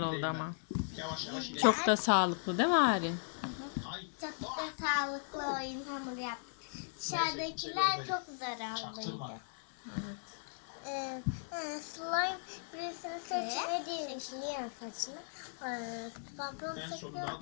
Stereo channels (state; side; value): silent; right; 53 dB below the other